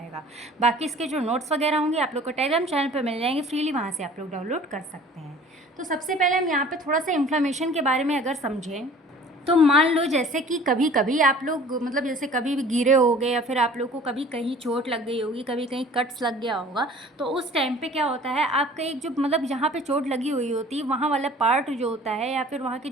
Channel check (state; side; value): normal; both; correlation 0.48